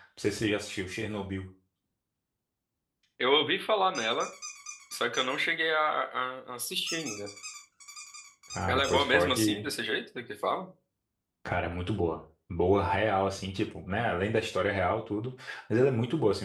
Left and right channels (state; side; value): identical; both; correlation 1.00